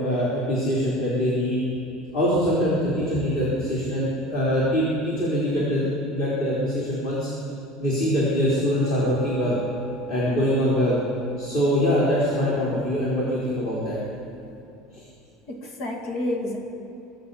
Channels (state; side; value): normal; both; correlation 0.40